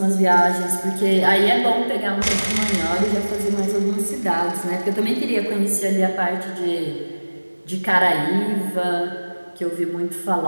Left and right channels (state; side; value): inverted; both; correlation -1.00